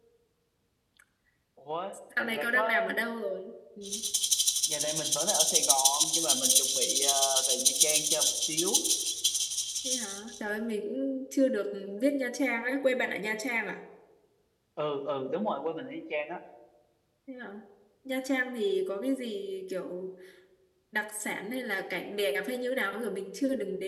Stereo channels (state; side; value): identical; both; correlation 1.00